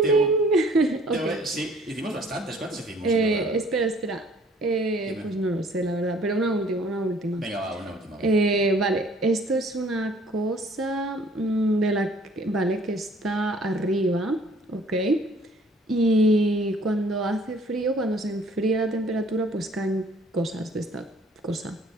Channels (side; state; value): both; normal; correlation 0.56